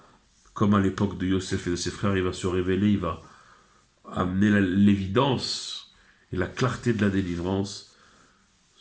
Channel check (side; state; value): both; identical; correlation 1.00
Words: comme à l'époque de Yosef et de ses frères, il va se révéler, il va amener l'évidence et la clarté de la délivrance,